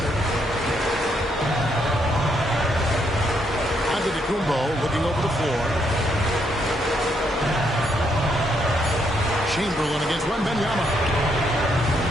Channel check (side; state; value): both; normal; correlation 0.75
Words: Antetokounmpo looking over the floor. Chamberlain against Wembanyama.